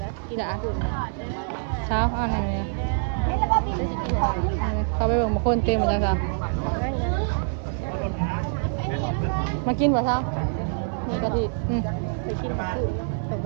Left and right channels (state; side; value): silent; left; 62 dB below the other